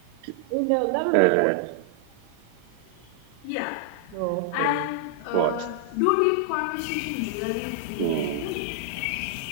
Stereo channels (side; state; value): both; different; correlation -0.01